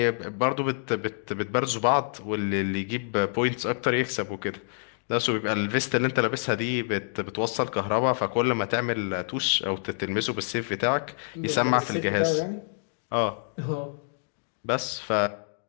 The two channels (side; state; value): right; silent; digital silence